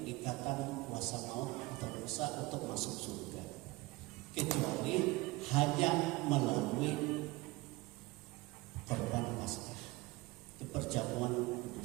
ikatan kuasa maut atau dosa untuk masuk surga, kecuali hanya melalui korban Paskah, itu perjamuan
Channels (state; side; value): quieter; left; 21.4 dB